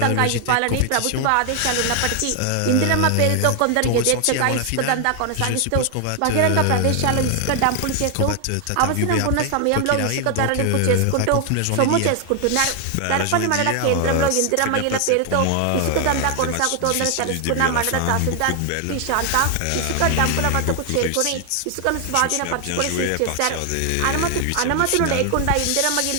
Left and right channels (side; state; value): both; different; correlation 0.00